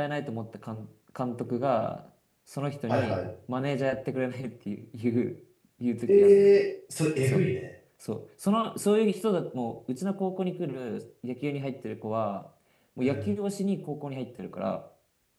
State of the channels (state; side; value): identical; both; correlation 1.00